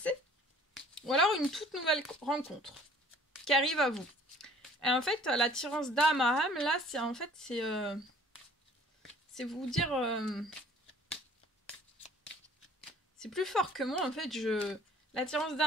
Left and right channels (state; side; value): normal; both; correlation 0.53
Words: ou alors une toute nouvelle rencontre qui arrive à vous. Et en fait, l'attirance d'âme à âme, là, c'est en fait, c'est vous dire... c'est plus fort que moi, en fait, L'attirance